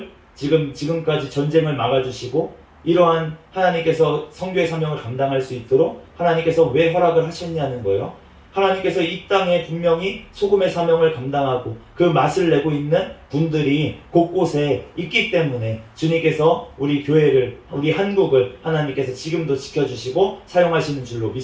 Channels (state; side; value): identical; both; correlation 1.00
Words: 지금까지 전쟁을 막아주시고 이러한 하나님께서 선교의 사명을 감당할 수 있도록 하나님께서 왜 허락을 하셨냐는 거예요. 하나님께서 이 땅에 분명히 소금의 사명을 감당하고 그 맛을 내고 있는 분들이 곳곳에 있기 때문에 주님께서 우리 교회를, 우리 한국을 하나님께서 지금도 지켜주시고 사용하시는 줄로